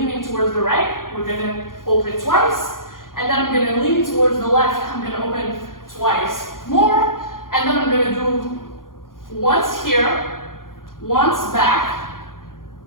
towards the right. We're gonna open twice, and then I'm gonna lean towards the left. I'm gonna open twice more, and then I'm gonna do once here, once back,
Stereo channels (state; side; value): late; right; 0.90 ms